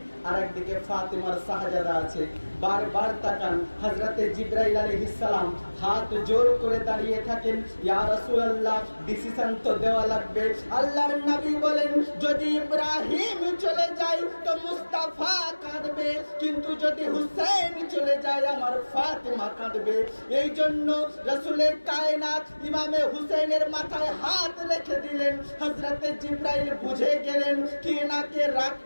আর একদিকে ফাতিমার শাহজাদা আছে। বারবার তাকান। হযরতে জিবরাইল আলাইহিস সালাম হাত জোর করে দাঁড়িয়ে থাকেন, ইয়া রাসূলুল্লাহ ডিসিশন তো দেওয়া লাগবে। আল্লাহর নবী বলেন, যদি ইব্রাহিম চলে যায় তো মুস্তাফা কাঁদবে, কিন্তু যদি হুসেন চলে যায় আমার ফাতেমা কাঁদবে। এই জন্য রাসূলের কায়নাত ইমামে হুসেনের মাথায় হাত রেখে দিলেন। হযরতে জিবরাইল বুঝে গেলেন কি এনাকে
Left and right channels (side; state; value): both; inverted; correlation -1.00